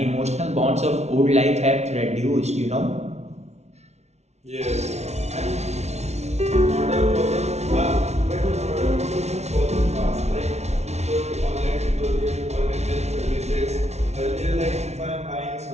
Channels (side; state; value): left; late; 0.32 ms